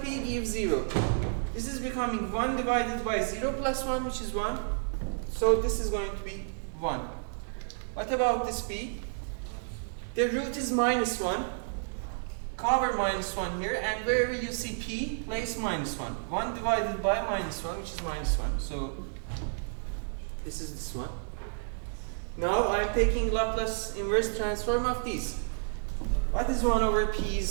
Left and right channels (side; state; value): left; silent; digital silence